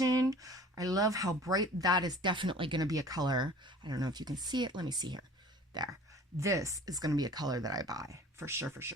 I love how bright that is. Definitely going to be a color. I don't know if you can see it. Let me see here. There. This is going to be a color that I buy. For sure, for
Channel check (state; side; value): normal; both; correlation 0.46